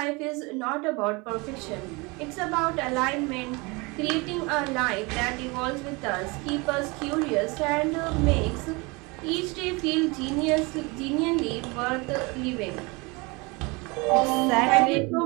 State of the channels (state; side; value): quieter; left; 26.7 dB